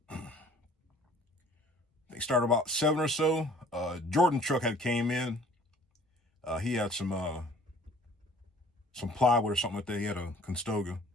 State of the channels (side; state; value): both; normal; correlation 0.53